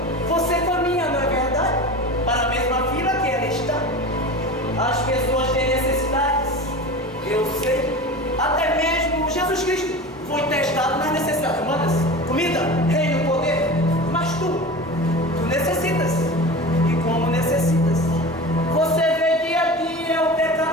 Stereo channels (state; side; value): normal; both; correlation 0.32